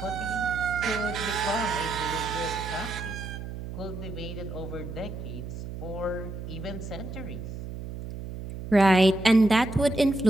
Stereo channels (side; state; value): right; noise; hum, 9 dB below the sound